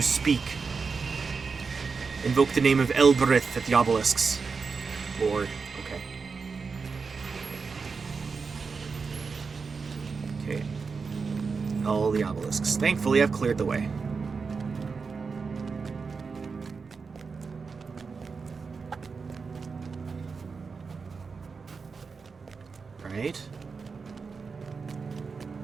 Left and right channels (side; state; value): left; quieter; 5.0 dB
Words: speak. Invoke the name of Elbereth at the obelisks. Lord, okay. Okay. All the obelisks. Thankfully, I've cleared the way. Right.